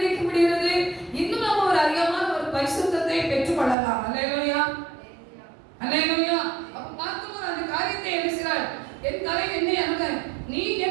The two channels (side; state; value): left; drops out; at 3.8 s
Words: முடிகிறது? இன்னும் நாம் ஒரு அதிகமான ஒரு பரிசுத்தத்தை பெற்றுக்கொள்ளலாம். ஹல்லேலூயா, ஹல்லேலூயா. அப்ப பார்க்கும்போது அந்த காரியத்தை எழுதுகிறார், என் தலை எண்ணெய் அணுக, நீ